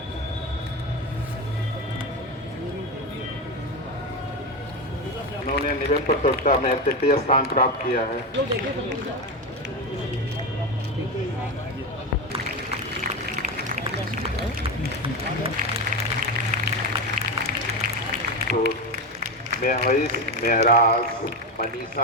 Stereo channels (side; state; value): both; normal; correlation 0.16